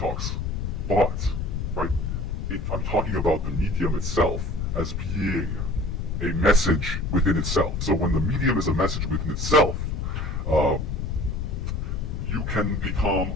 but, right, I'm talking about the medium itself as being a message within itself. So when the medium is a message within itself, you can become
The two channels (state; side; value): noise; left; rumble, 2 dB below the sound